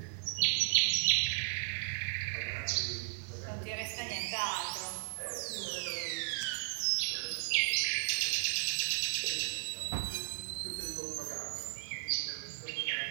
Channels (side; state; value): left; silent; 54 dB below the other